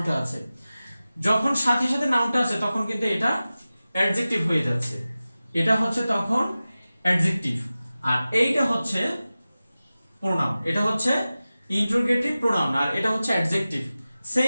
আছে। যখন সাথে সাথে নাউনটা আছে তখন কিন্তু এটা অ্যাডজেক্টিভ হয়ে যাচ্ছে, এটা হচ্ছে তখন অ্যাডজেক্টিভ। আর এইটা হচ্ছে প্রোনাউন, এটা হচ্ছে ইন্টারোগেটিভ প্রোনাউন, আর এটা হচ্ছে adjective.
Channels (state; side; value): inverted; both; correlation -0.96